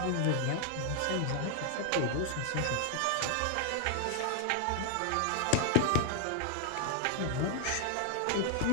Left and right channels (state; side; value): different; both; correlation 0.00